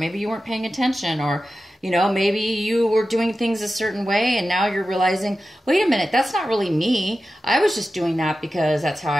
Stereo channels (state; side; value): normal; both; correlation 0.93